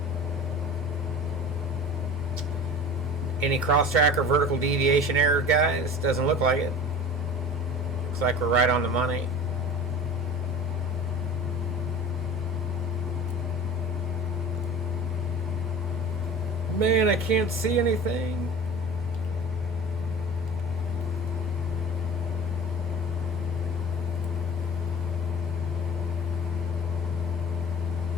Any cross-track or vertical deviation error, guys? Doesn't look like it. Looks like we're right on the money. Man, I can't see anything.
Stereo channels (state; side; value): normal; both; correlation 0.38